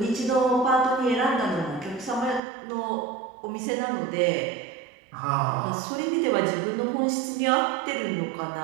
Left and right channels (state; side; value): drops out; left; at 2.4 s